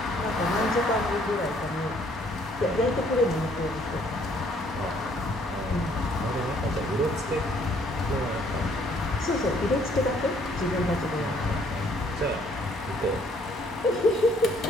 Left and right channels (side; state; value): both; normal; correlation 0.63